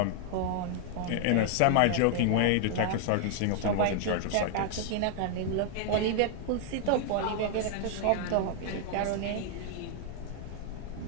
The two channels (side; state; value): both; different; correlation 0.00